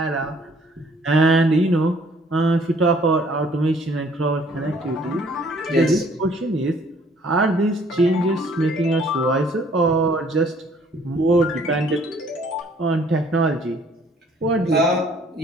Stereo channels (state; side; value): normal; both; correlation 0.59